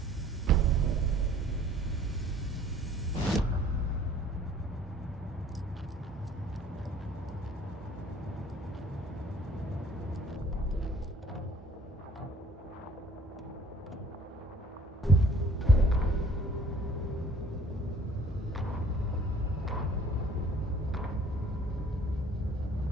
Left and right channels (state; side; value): normal; both; correlation 0.54